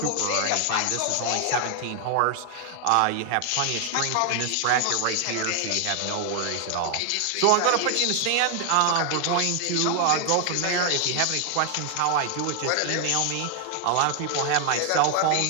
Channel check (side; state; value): both; different; correlation 0.00